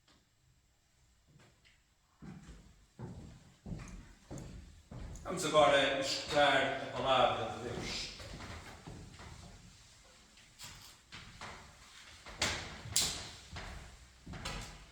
Vamos agora escutar a palavra de Deus.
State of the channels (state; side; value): identical; both; correlation 1.00